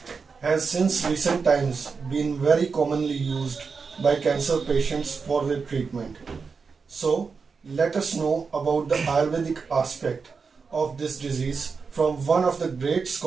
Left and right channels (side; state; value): left; quieter; 5.2 dB